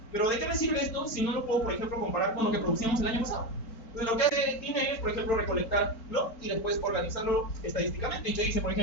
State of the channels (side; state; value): right; late; 4.4 ms